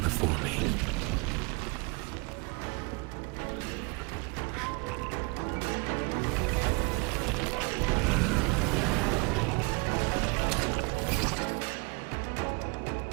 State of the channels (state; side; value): quieter; left; 30.1 dB